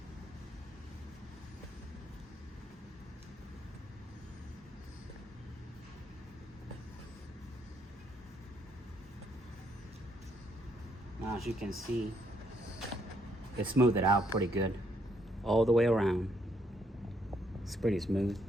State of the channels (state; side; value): normal; both; correlation 0.72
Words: Now as you can see, it smoothed it out pretty good all the way around. It's pretty smooth.